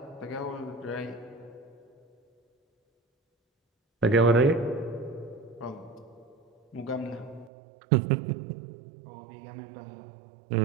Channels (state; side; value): drops out; left; at 7.5 s